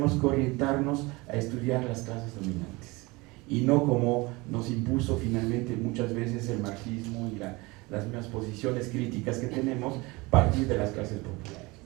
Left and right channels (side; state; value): left; quieter; 23.8 dB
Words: que orientarnos a estudiar las clases dominantes, y no como nos impuso finalmente muchas veces el marxismo y las mismas posiciones críticas que tenemos, partir de las clases populares.